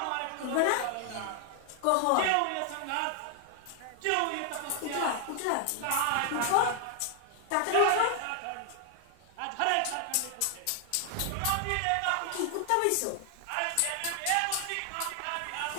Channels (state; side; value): different; both; correlation 0.00